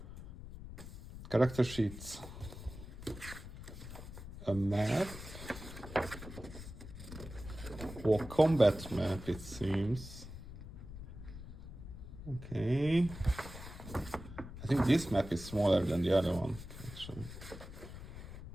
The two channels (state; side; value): noise; left; rumble, 12 dB below the sound